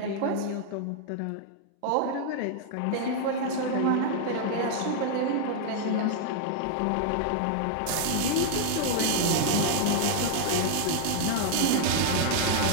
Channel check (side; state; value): both; different; correlation -0.01